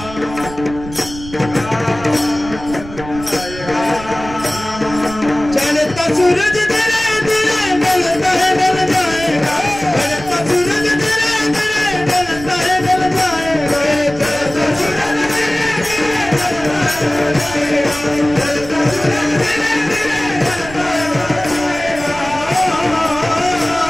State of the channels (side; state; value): right; noise; rumble, 14 dB below the sound